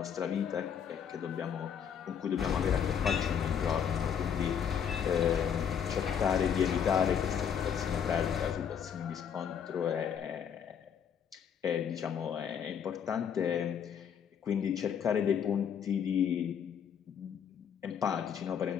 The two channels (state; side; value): quieter; right; 8.0 dB